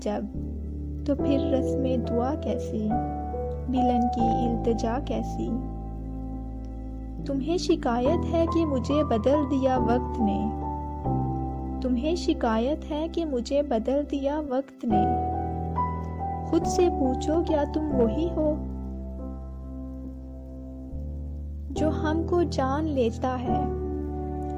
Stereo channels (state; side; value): identical; both; correlation 1.00